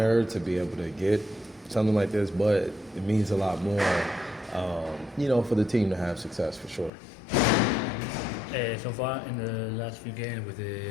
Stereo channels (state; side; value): drops out; right; at 6.9 s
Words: to be able to get something like this, but it means a lot more, for the team to have success for sure. So far in the last few games with